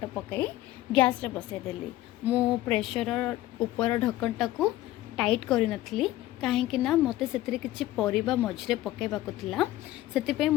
पकाई गैस रे बसईदेली। मु प्रेशर ऊपर ढक्कनटा को टाइट करी नथली कहीं ना मते सेतरे किछि परिबा मझरे पकाइबाको थिला। सेतिपई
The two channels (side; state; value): right; quieter; 15.6 dB